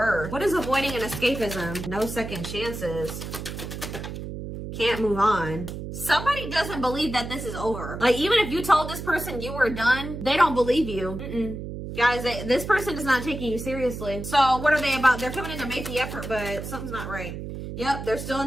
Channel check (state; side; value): noise; right; hum, 8 dB below the sound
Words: What is avoiding and escapism? No second chances. Can't move on. Somebody doesn't believe that this is over. Like, even if you told this person you were done, they don't believe you. Guys, this person is not taking you seriously. So what are they about? They're coming in to make the effort, but something's not right. Yep, they're still in